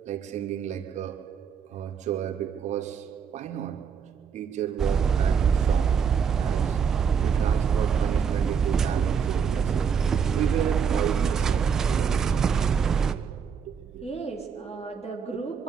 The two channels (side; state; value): left; quieter; 6.8 dB